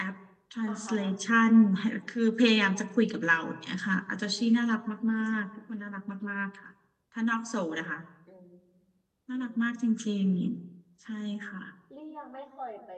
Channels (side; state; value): both; identical; correlation 1.00